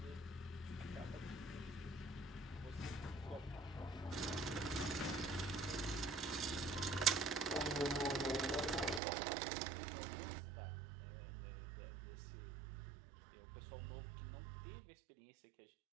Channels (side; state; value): left; drops out; at 9.0 s